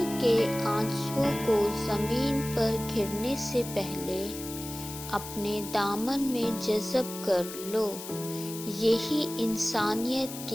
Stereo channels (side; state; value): left; noise; hiss, 11 dB below the sound